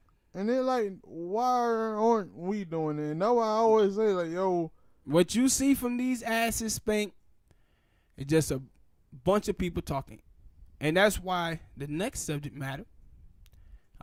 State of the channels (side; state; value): both; identical; correlation 1.00